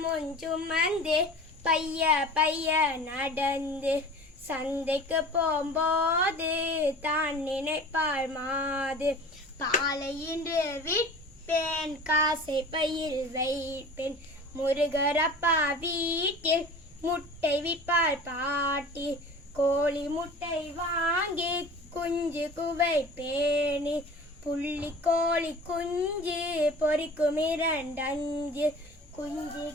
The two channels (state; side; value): normal; both; correlation 0.40